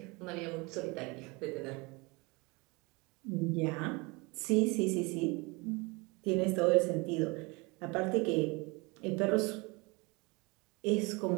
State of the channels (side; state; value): left; quieter; 27.0 dB